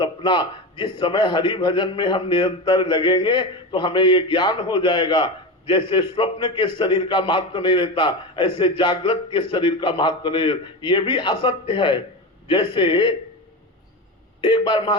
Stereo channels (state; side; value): normal; both; correlation 0.21